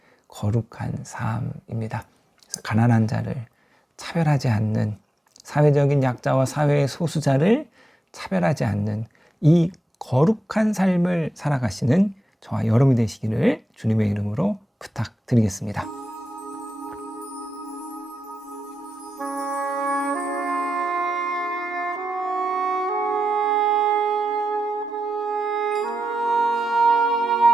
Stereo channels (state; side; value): normal; both; correlation 0.89